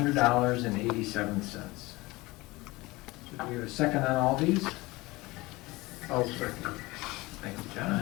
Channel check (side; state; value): right; quieter; 21.5 dB